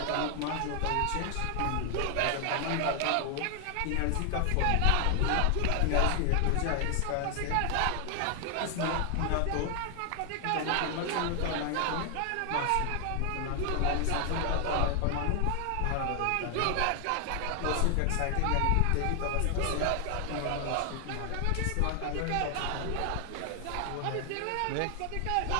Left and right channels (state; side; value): different; both; correlation 0.00